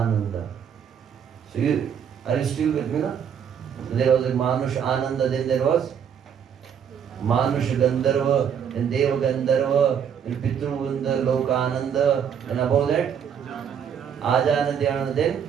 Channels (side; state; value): left; quieter; 8.0 dB